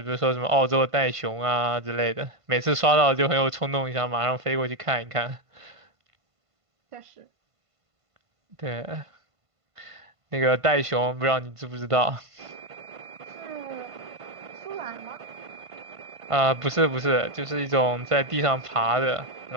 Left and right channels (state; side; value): late; left; 1.5 ms